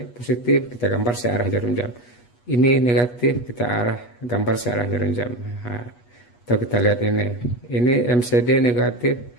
positif kita gambar searah jarum jam. Ini negatif kita gambar searah jarum jam. Nah, atau kita lihat ini MCD negatif.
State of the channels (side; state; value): right; late; 8.3 ms